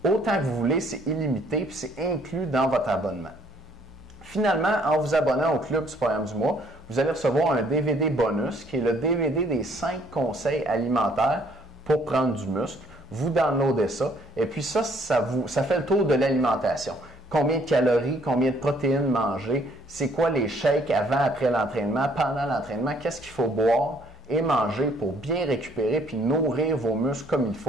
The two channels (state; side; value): normal; both; correlation 0.63